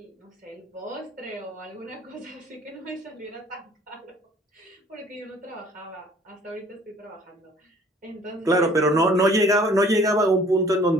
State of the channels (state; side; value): normal; both; correlation 0.54